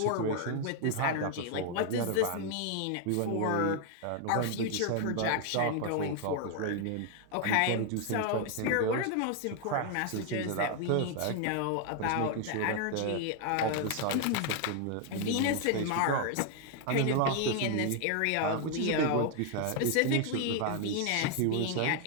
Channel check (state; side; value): different; both; correlation 0.00